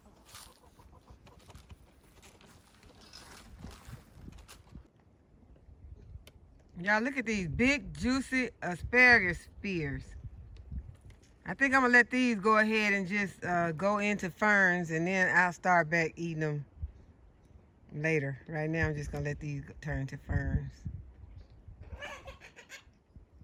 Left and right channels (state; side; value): identical; both; correlation 1.00